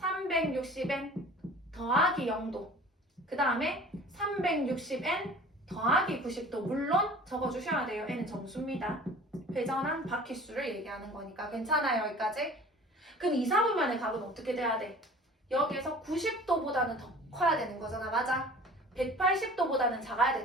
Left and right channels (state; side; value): normal; both; correlation 0.44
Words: 더하기 0도. 그 다음에 360n 더하기 90도. 물론 적어주셔야 돼요. n은 정수입니다. 회전한 바퀴수를 얘기하는 거니까. 괜찮아요, 여기까지? 그럼 2, 4분면의 각은 어떻게 돼야 돼? 여기에서 90도보다는 더 커야 되는 거잖아, 맞아? 180도보다는 작아야